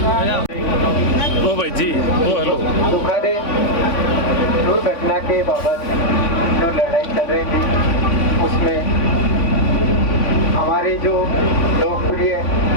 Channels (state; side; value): late; right; 3.5 ms